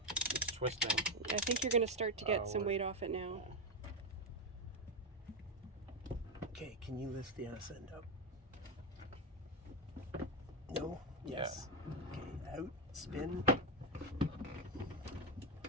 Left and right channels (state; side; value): normal; both; correlation 0.06